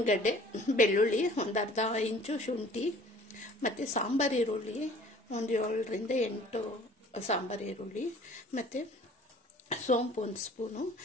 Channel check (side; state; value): both; normal; correlation 0.50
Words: ಗಡ್ಡೆ ಬೆಳ್ಳುಳ್ಳಿ, ಒಂದು ಅರ್ಧ ಇಂಚು ಶುಂಠಿ, ಮತ್ತು ಸಾಂಬಾರು ಈರುಳ್ಳಿ ಒಂದು 7 ರಿಂದ 8 ಸಾಂಬಾರು ಈರುಳ್ಳಿ, ಮತ್ತು ಸೋಂಪು 1 ಸ್ಪೂನು,